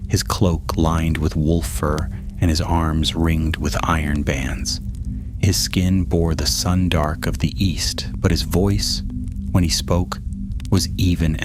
his cloak lined with wolf fur and his arms ringed with iron bands. His skin bore the sun-dark of the east, but his voice, when he spoke, was even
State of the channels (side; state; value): both; identical; correlation 1.00